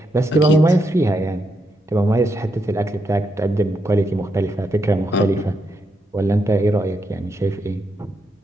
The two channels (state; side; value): normal; both; correlation 0.81